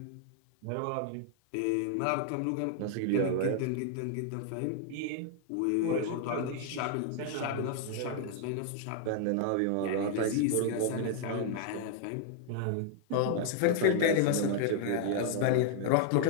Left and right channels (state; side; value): different; both; correlation 0.00